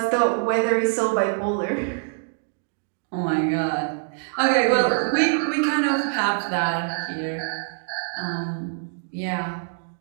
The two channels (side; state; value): left; silent; digital silence